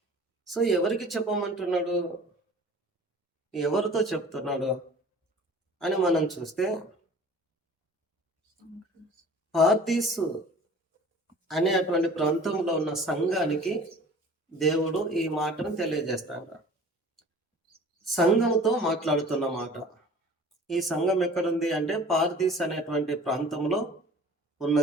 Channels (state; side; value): normal; both; correlation 0.45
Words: సో ఎవరికి చెప్పమంటున్నాడు, ఎవరితో చెప్తున్నాడు అని మనం చూస్తే, పార్దీసు అనేటువంటి ప్రాంతంలో ఉన్న సంఘానికి దేవుడు ఈ మాటను తెలియజేస్తాడు. సంఘంతో మాట్లాడుతున్న మాట. ఈ సంఘం ఎక్కడుంది అంటే పార్దీస్ అనేటువంటి ప్రాంతంలో